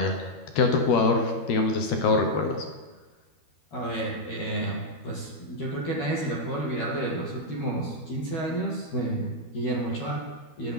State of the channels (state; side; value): late; right; 13 ms